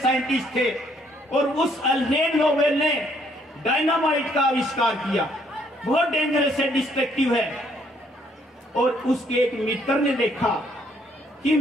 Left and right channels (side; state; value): both; normal; correlation 0.67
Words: थे, और उस अल्फ्रेड नोबेल ने डायनामाइट का आविष्कार किया। बहुत डेंजरस है, डिस्ट्रक्टिव है। और उसके एक मित्र ने देखा कि